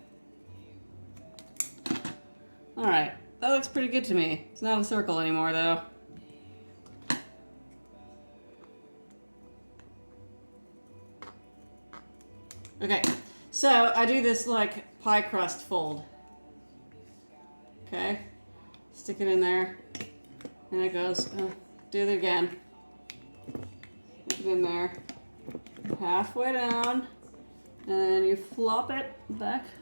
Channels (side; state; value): both; inverted; correlation -1.00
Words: All right, that looks pretty good to me. It's not a circle anymore, though. Okay, so I do this like pie crust fold. Okay, stick it in there, and it goes, do it again. Stick it in there, halfway down, and then you flop it back